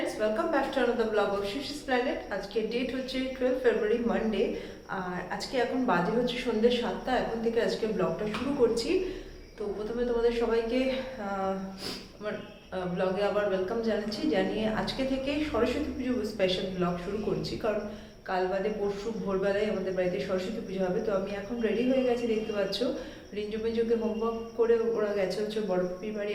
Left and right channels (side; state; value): both; identical; correlation 1.00